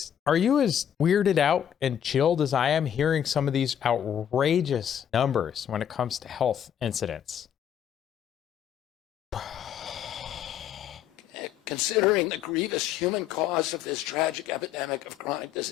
are you as weirded out and chilled as I am hearing some of these outrageous numbers when it comes to health incidents? Considering the grievous human cost of this tragic epidemic of chronic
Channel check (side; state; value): right; quieter; 9.5 dB